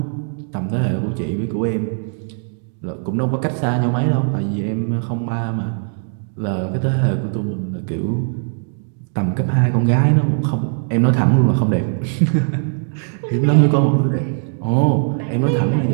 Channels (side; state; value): left; silent; 59 dB below the other